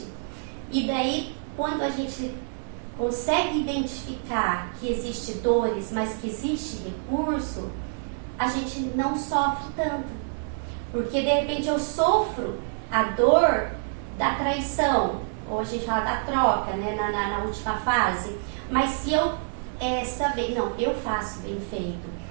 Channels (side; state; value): left; silent; digital silence